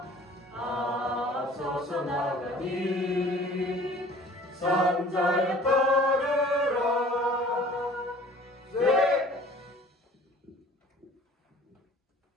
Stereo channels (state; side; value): normal; both; correlation 0.49